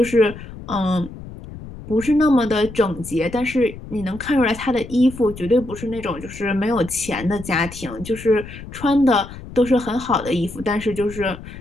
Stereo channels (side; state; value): left; noise; rumble, 14 dB below the sound